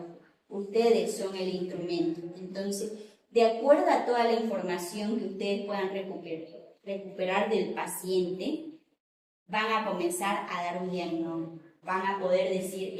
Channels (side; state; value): both; identical; correlation 1.00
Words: Ustedes son el instrumento. Entonces, de acuerdo a toda la información que ustedes puedan recuperar del paciente, van a comenzar a dar un diagnóstico. Van a poder decir,